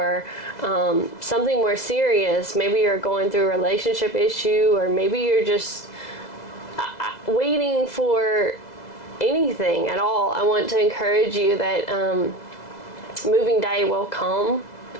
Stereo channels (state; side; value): late; right; 2.0 ms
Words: something more serious. Maybe you're going through a relationship issue, or maybe you're just waiting for anything at all. I want to encourage you that moving day will come,